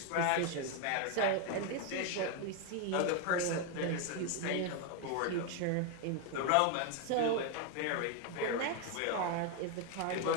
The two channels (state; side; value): different; both; correlation 0.01